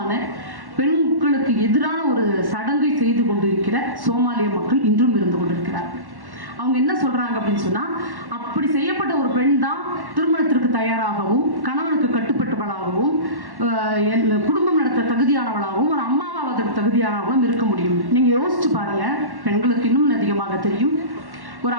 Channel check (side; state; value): left; late; 1.1 ms